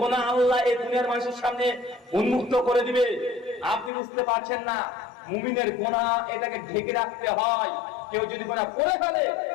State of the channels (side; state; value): right; drops out; at 3.9 s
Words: আল্লাহ এই দুনিয়ার মানুষের সামনে উন্মুক্ত করে দিবে, আপনি বুঝতে পারছেন না। মুমিনের গুনাহ এটাকে ঢেকে রাখতে হয়। কেউ যদি গুনাহ করে ফেলে,